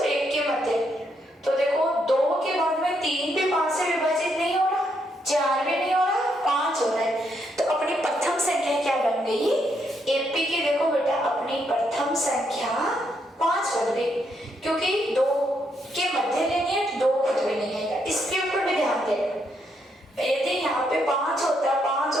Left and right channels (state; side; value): normal; both; correlation 0.76